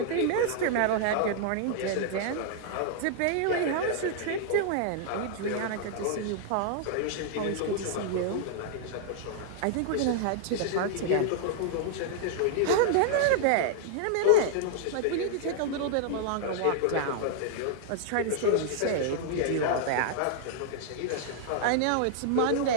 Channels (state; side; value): different; both; correlation -0.01